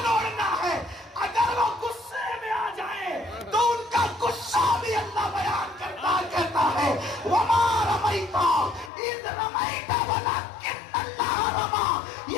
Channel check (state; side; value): drops out; right; at 8.9 s